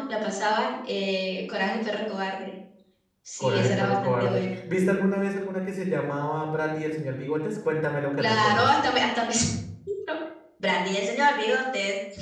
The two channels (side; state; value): both; identical; correlation 1.00